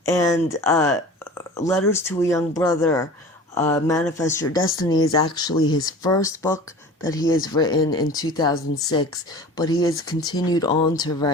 Letters to a Young Brother, Manifest Your Destiny is actually his first book that he has written in 2006, but he has continued on to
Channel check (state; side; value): normal; both; correlation 0.39